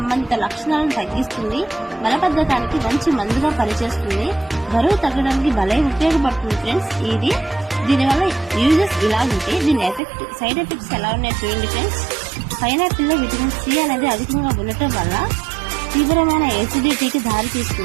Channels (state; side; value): drops out; left; at 10.0 s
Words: లక్షణాలను తగ్గిస్తుంది, మలబద్ధకానికి మంచి మందుగా పనిచేస్తుంది, బరువు తగ్గడానికి భలే ఉపయోగపడుతుంది ఫ్రెండ్స్. దీనివల్ల యూజెస్ ఇలా ఉంటే దీని సైడ్ ఎఫెక్ట్స్ ఎలా ఉన్నాయి చూడండి ఫ్రెండ్స్. పైనాపిల్ లో విటమిన్ సి అనేది అధికంగా ఉండటం వల్ల తీవ్రమైన ఎసిడిటీకి దారి